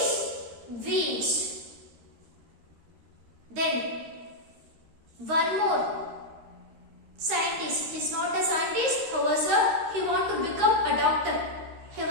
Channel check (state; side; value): late; left; 13 ms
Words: veins. Then one more scientist, he is not a scientist, however he want to become a doctor. He